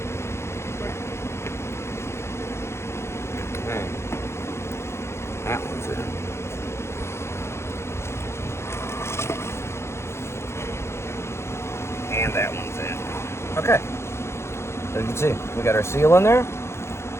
That one's in. And that one's in. Okay. As you can see, we got our seal in there.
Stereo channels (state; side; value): late; right; 0.13 ms